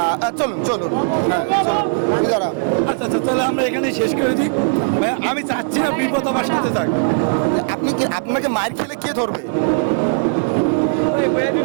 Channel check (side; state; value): left; silent; digital silence